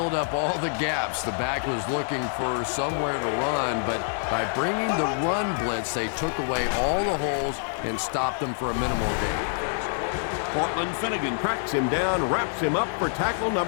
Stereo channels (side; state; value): right; silent; digital silence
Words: up all the gaps. The back was looking for somewhere to run, but by bringing the run blitz, they took away all the holes and stopped them for a minimal gain. Portland Finnegan cracks him down, wraps him up for tackle